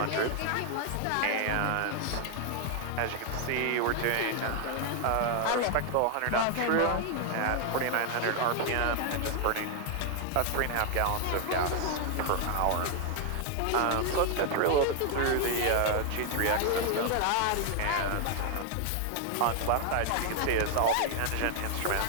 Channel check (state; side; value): different; both; correlation 0.00